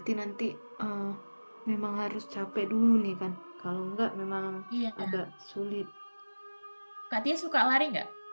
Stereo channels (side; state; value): both; inverted; correlation -1.00